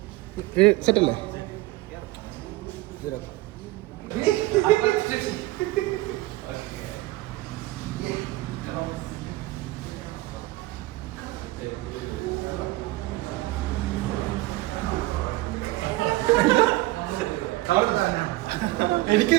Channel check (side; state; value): left; quieter; 18.7 dB